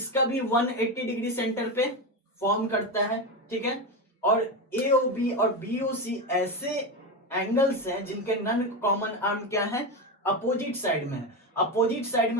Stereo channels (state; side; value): normal; both; correlation 0.16